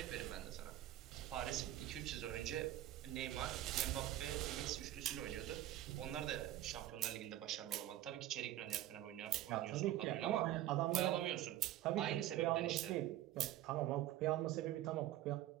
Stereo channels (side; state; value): left; quieter; 13.6 dB